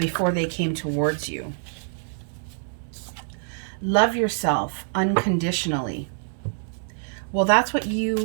they came towards you. Love yourself unconditionally. Well, that's what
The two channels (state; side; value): silent; left; digital silence